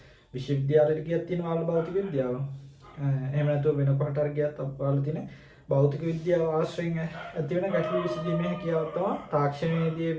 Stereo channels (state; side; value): identical; both; correlation 1.00